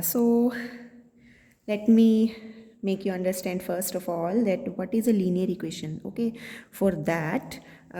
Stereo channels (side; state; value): both; identical; correlation 1.00